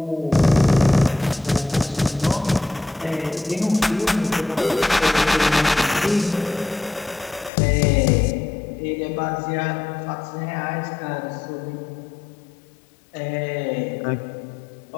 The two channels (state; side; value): drops out; right; at 7.5 s